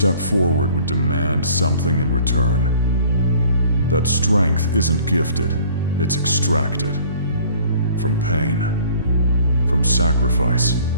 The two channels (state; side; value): inverted; both; correlation -0.53